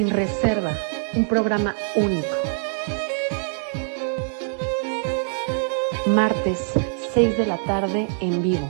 Reserva, un programa único. Martes, 6 de la tarde en vivo.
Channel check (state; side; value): silent; left; 63 dB below the other